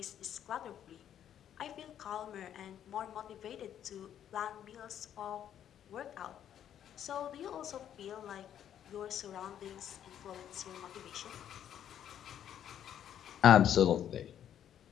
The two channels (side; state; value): right; quieter; 10.0 dB